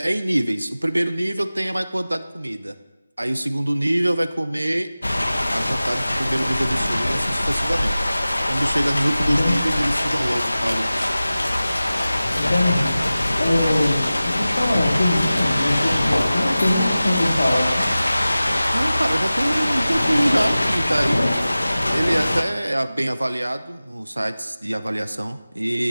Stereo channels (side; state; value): both; inverted; correlation -0.97